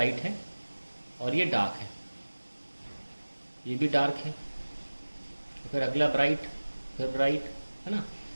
है और ये डार्क है, ये भी डार्क है, फिर अगला ब्राइट, फिर ब्राइट, है ना।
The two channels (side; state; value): both; inverted; correlation -1.00